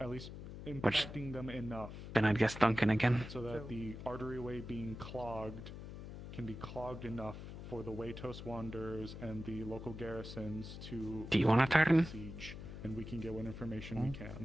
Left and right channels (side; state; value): left; noise; hum, 10 dB below the sound